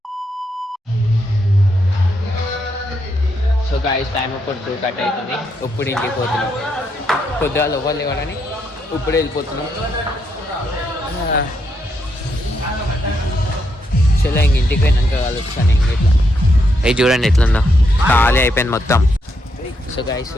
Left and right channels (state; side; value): normal; both; correlation 0.79